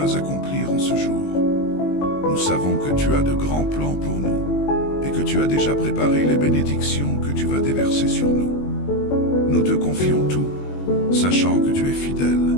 accomplir en ce jour. Nous savons que tu as de grands plans pour nous et que tu as déjà préparé les bénédictions que tu vas déverser sur nous. Nous te confions tout, sachant que tu es fidèle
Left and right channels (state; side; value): late; right; 21 ms